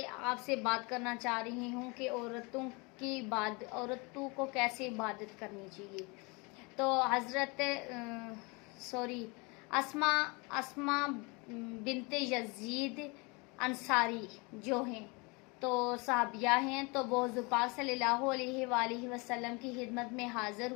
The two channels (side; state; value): right; quieter; 28.5 dB